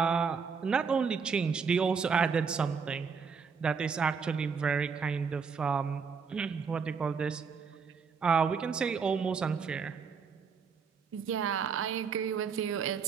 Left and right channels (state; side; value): quieter; left; 5.8 dB